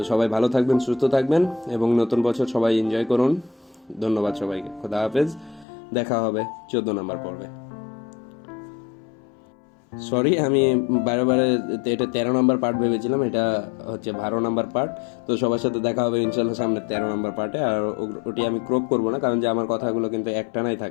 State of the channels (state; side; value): drops out; right; at 5.7 s